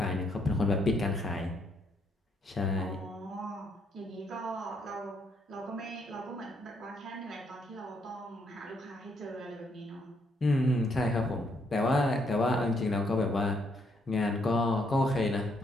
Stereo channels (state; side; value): normal; both; correlation 0.73